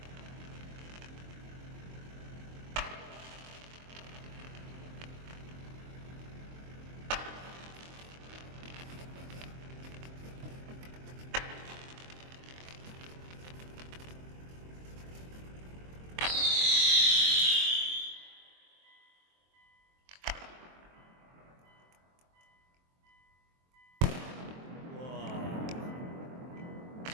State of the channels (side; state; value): left; late; 23 ms